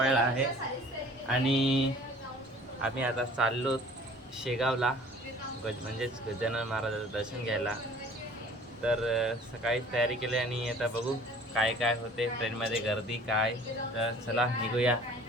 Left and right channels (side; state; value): both; normal; correlation 0.49